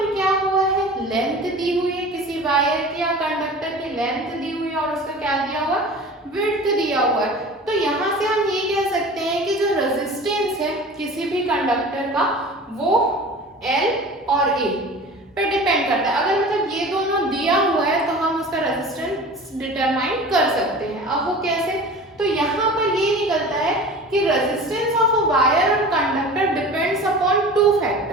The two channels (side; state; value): both; normal; correlation 0.39